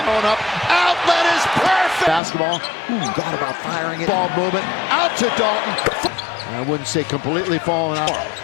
up. Outlet is perfect. Basketball. Thought about firing it. Ball movement out to Dalton. I wouldn't say completely falling out.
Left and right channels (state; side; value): drops out; right; at 2.2 s